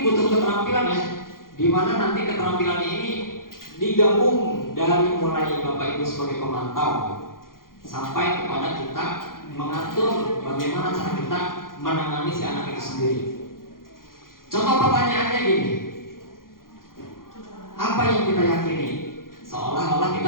butuh keterampilan ya, di mana nanti keterampilan ini digabung dari mulai Bapak Ibu sebagai pemantau sampai kepada kita mengatur bagaimana cara kita menangani si anak itu sendiri. Contoh pertanyaannya gini, apa yang kita yakini? Seolah-olah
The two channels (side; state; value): right; late; 0.91 ms